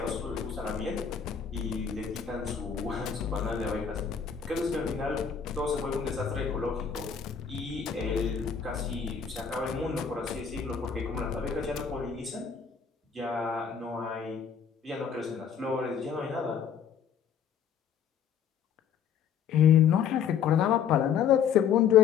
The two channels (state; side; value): quieter; right; 7.5 dB